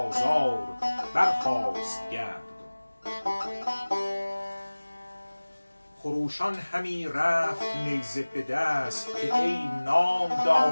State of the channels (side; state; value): both; inverted; correlation -1.00